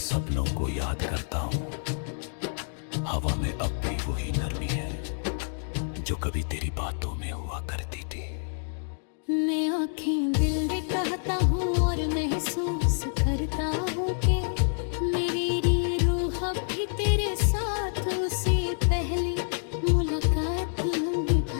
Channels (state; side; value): silent; right; digital silence